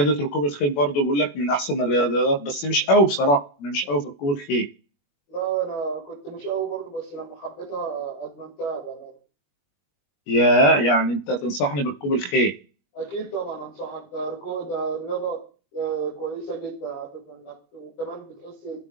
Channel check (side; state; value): right; late; 21 ms